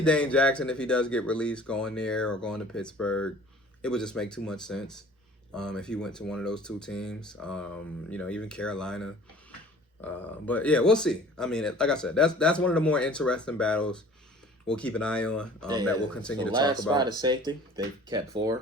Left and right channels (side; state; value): both; normal; correlation 0.48